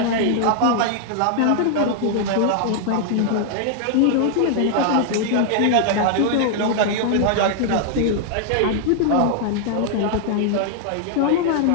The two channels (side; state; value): both; different; correlation 0.00